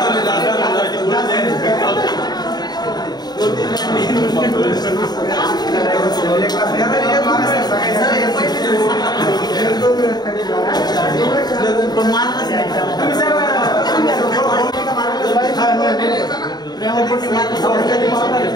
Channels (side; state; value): right; late; 0.20 ms